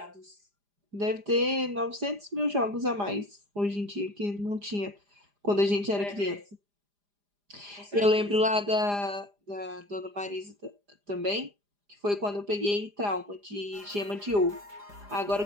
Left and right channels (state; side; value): late; left; 4.9 ms